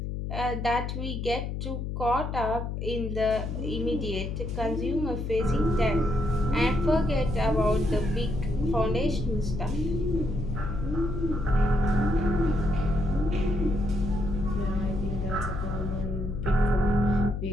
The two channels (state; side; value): noise; left; hum, 4 dB below the sound